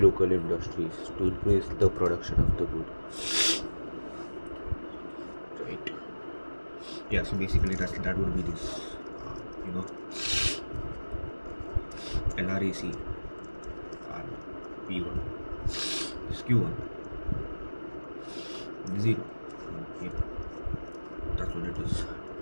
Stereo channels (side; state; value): both; inverted; correlation -1.00